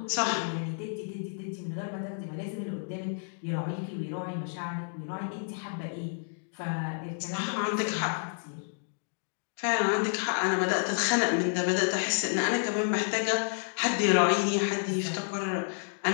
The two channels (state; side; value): silent; right; digital silence